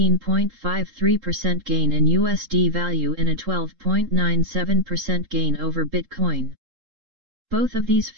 gain in USD value and a 12.97% gain over Bitcoin. Both of these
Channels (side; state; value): left; late; 3.7 ms